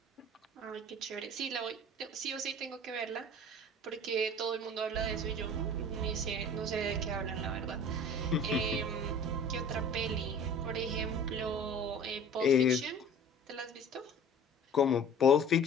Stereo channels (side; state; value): both; normal; correlation 0.44